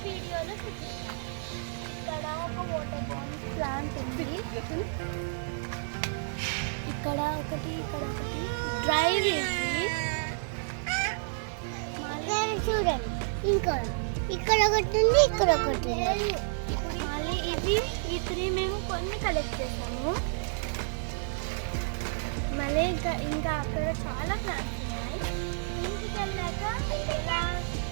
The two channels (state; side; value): silent; left; digital silence